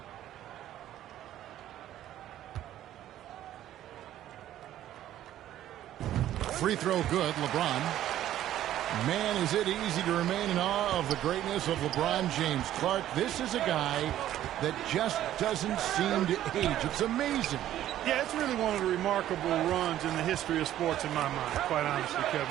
Free throw good, LeBron. Man, is it easy to remain in awe of the greatness of LeBron James. Clark, this is a guy that just doesn't seem to age. It's amazing. Yeah, it's really one of the remarkable runs in the history of sports in my mind, quite honestly,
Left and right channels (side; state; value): left; quieter; 12.5 dB